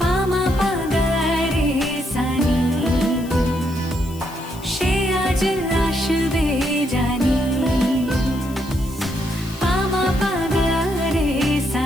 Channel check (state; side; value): noise; left; hiss, 20 dB below the sound